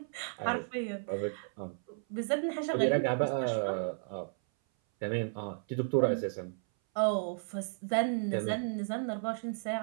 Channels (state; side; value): silent; left; 55 dB below the other